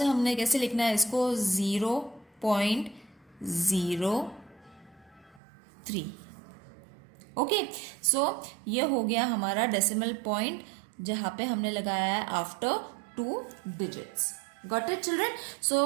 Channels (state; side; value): drops out; left; at 5.4 s